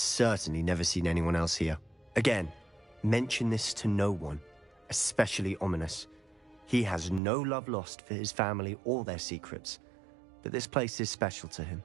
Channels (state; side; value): drops out; left; at 7.2 s